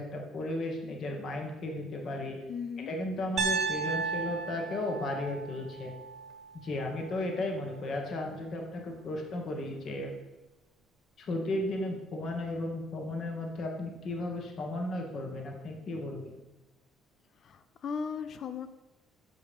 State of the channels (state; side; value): normal; both; correlation 0.57